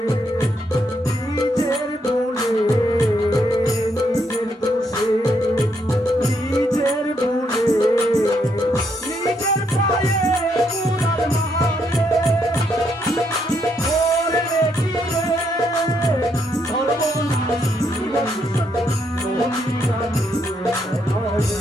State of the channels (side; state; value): both; normal; correlation 0.76